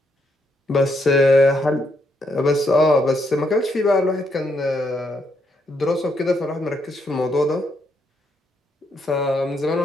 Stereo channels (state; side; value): normal; both; correlation 0.76